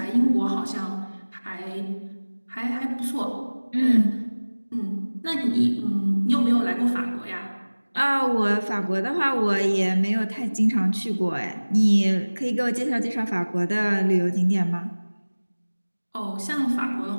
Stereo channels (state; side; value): inverted; both; correlation -1.00